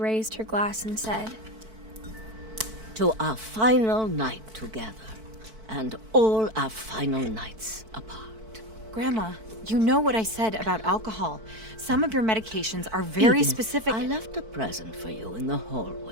her glass and said, "To our final night together, and all our final nights apart." Grandma, you know what I said about alcohol. Some of your medications are very Edith, specific. I left a present for you in the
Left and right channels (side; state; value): left; late; 4.5 ms